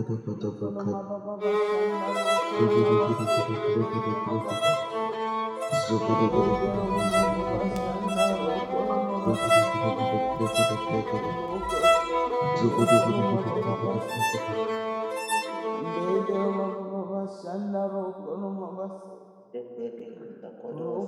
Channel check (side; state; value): both; identical; correlation 1.00